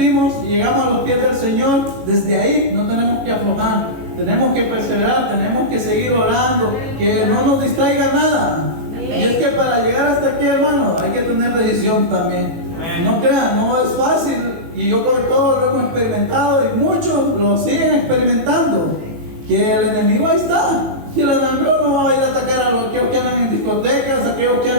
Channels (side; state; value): left; late; 18 ms